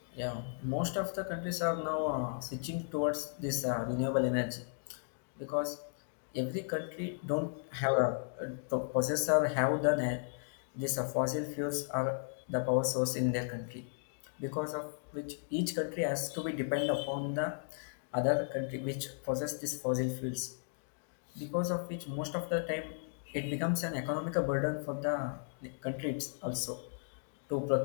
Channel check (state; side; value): silent; right; digital silence